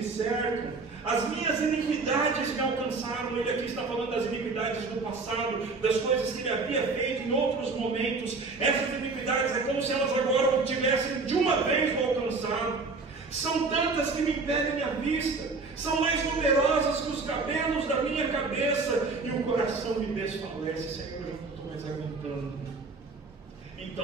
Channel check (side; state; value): left; quieter; 4.0 dB